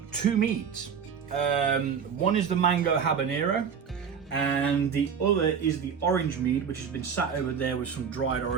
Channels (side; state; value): left; quieter; 6.9 dB